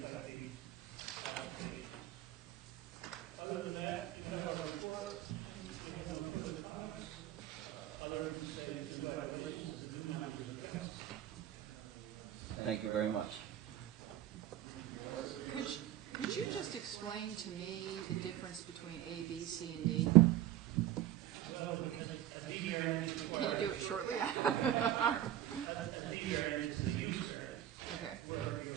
type B applications. Other than that, you have our report. We have no further comments, other than to say congratulations to the new members of the council. Thank you very much. Could you just explain to me the difference between A, B, C, and D? Well, a D variance requires... Can you do it shortly? A D variance is a use variance, Okay. where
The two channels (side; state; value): left; quieter; 12.7 dB